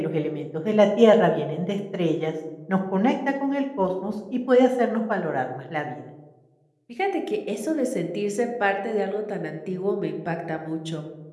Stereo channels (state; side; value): identical; both; correlation 1.00